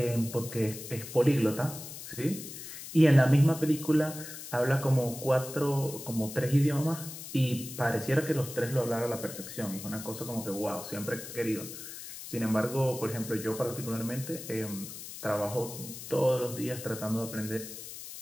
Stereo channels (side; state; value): left; noise; hiss, 11 dB below the sound